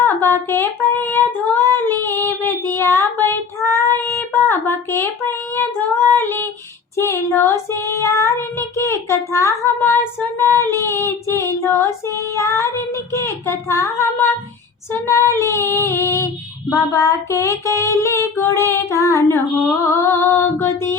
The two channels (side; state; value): right; quieter; 5.5 dB